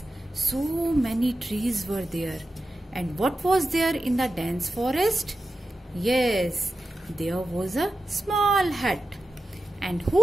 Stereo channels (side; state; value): both; normal; correlation 0.92